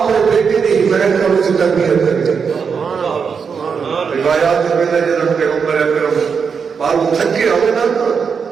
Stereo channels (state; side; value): quieter; left; 6.1 dB